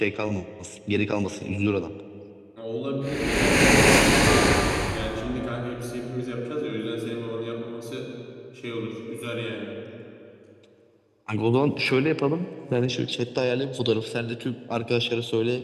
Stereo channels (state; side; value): identical; both; correlation 1.00